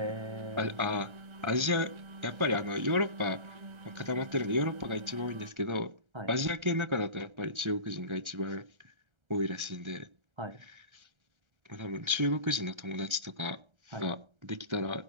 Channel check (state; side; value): late; left; 1.3 ms